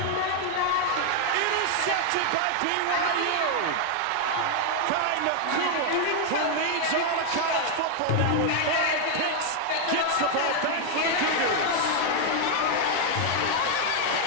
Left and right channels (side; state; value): both; different; correlation 0.00